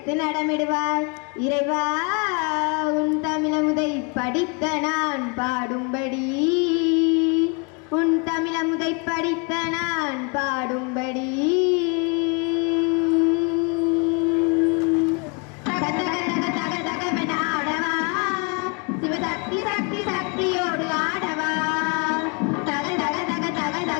நடமிடுவார் இறைவா, உன் தமிழமுதை படித்த நான் பாடும்படி, உன் தமிழமுதை படித்த நான் பாடும்படி.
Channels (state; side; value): quieter; right; 33.4 dB